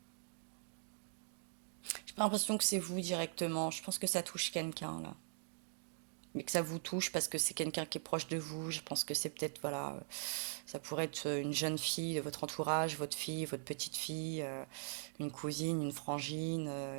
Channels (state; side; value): silent; left; digital silence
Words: J'ai l'impression que c'est vous directement. Je pense que ça touche quelqu'un là. mais que ça vous touche parce que c'est quelqu'un qui est proche de vous. Je pense que c'est peut-être, voilà, ça pourrait être une jeune fille de votre entourage, votre fille, votre petite fille, une cousine, une frangine,